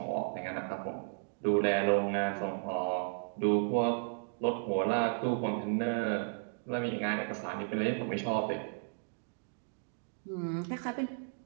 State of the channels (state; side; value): silent; left; digital silence